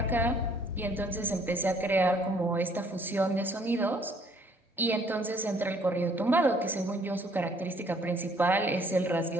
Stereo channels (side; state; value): both; normal; correlation 0.61